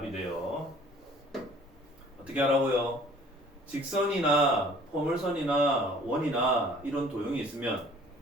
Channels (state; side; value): normal; both; correlation 0.53